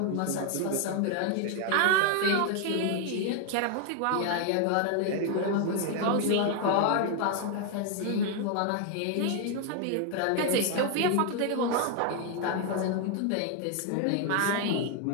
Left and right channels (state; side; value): different; both; correlation 0.00